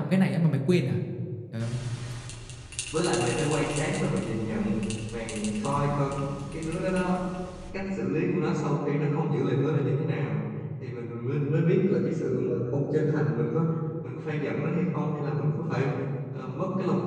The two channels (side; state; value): both; identical; correlation 1.00